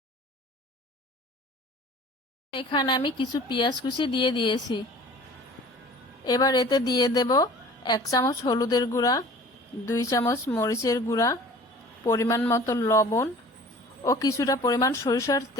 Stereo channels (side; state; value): both; normal; correlation 0.46